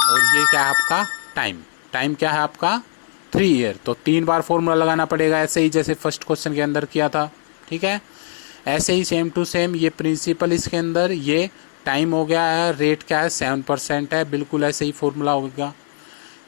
और ये क्या है आपका टाइम। टाइम क्या है आपका 3 ईयर, तो 3 बार फॉर्मूला लगाना पड़ेगा, ऐसे ही जैसे फर्स्ट क्वेश्चन के अंदर किया था। ठीक है, ऐसे ही सेम टू सेम, ये प्रिंसिपल इसके अंदर, ये टाइम हो गया है, रेट क्या है 7% है, बिल्कुल ऐसे ही फॉर्मूला होगा।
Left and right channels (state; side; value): silent; right; 66 dB below the other